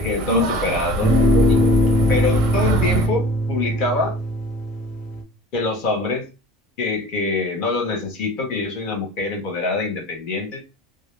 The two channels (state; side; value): normal; both; correlation 0.42